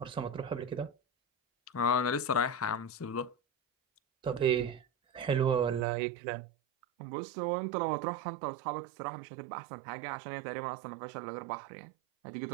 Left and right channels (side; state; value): left; drops out; at 5.9 s